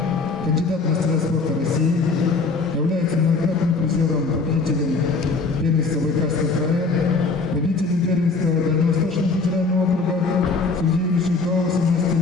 кандидат в мастера спорта России, является многократным призером, победителем первенства Байкальского края, победителем первенства Дальневосточного федерального округа среди юношей до 18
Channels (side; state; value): right; quieter; 4.1 dB